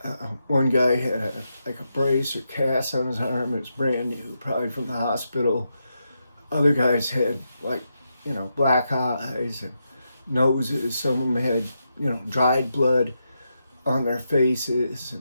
One guy had a brace or cast on his arm. It was brand new, probably from the hospital. Other guys had black eyes and noses. Some of them had, dried blood on their faces.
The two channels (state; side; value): inverted; both; correlation -0.84